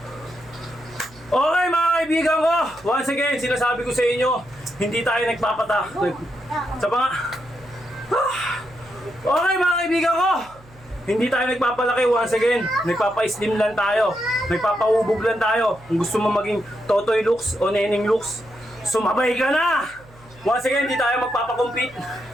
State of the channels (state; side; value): noise; right; hum, 25 dB below the sound